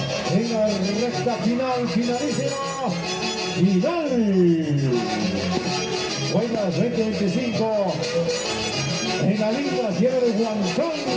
en la recta final, finalísima, final. Guaymas 2025 en la linda tierra de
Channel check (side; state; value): both; identical; correlation 1.00